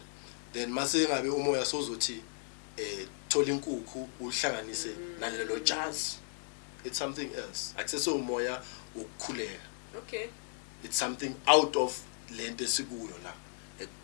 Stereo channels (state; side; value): silent; right; 54 dB below the other